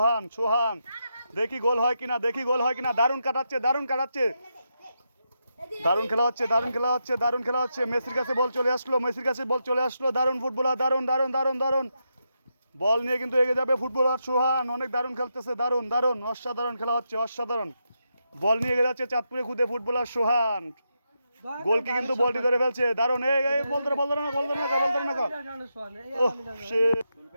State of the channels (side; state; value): both; inverted; correlation -0.84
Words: সোহান দেখি গোল হয় কিনা দারুণ কাটাচ্ছে দারুণ খেলা হচ্ছে দারুণ খেলা হচ্ছে মেসির কাছে বল চলে আসলো দারুণ ফুটবলার দারুণ বল নিয়ে কিন্তু এগিয়ে যাবে ফুটবলার সোহান অনেক দারুণ খেলতেছে দারুণ অসাধারণ খেলা হচ্ছে অসাধারণ বল নিয়ে এগিয়ে যাচ্ছে চাঁদপুরে খুদে ফুটবলার সোহান গোলকি কিন্তু বলটি ধরে ফেলছে দারুণ এই বল ধরে না